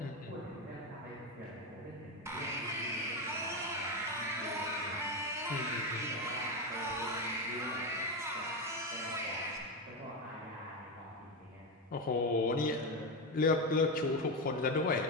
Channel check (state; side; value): normal; both; correlation 0.13